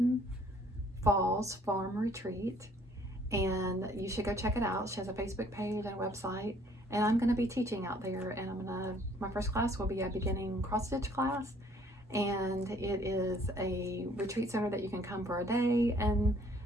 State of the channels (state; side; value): normal; both; correlation 0.60